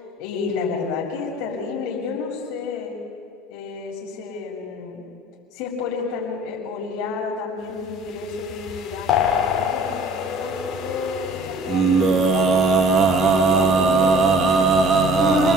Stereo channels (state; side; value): normal; both; correlation 0.50